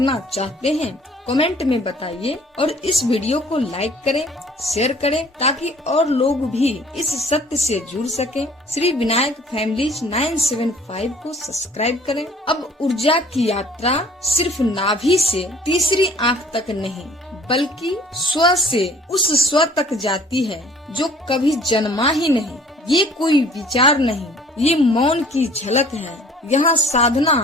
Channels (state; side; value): normal; both; correlation 0.53